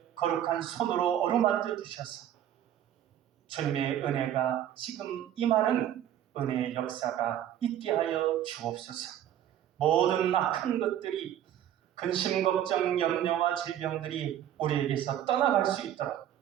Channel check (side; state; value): left; quieter; 11.0 dB